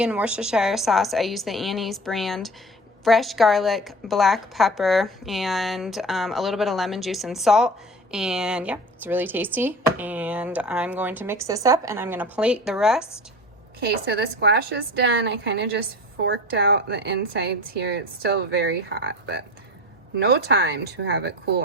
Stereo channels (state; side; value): normal; both; correlation 0.35